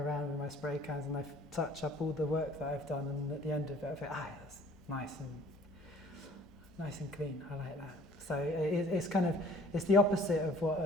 with my spray cans and I touch up all the work that I've done, and at the end of it I think, that's nice and clean. I like that. So it's the opposite of what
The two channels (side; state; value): both; normal; correlation 0.54